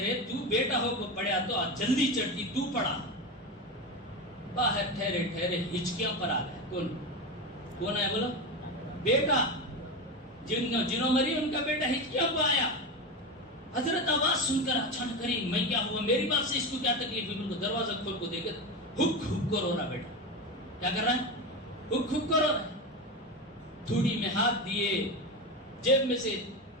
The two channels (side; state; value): both; normal; correlation 0.19